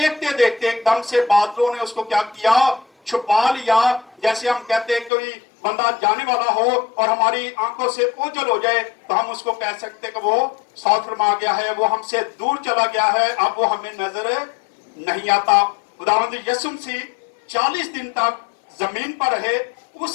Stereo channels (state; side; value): drops out; right; at 5.1 s